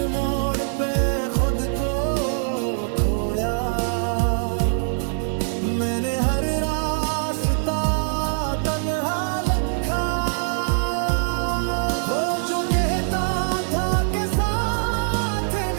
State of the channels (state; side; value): silent; left; digital silence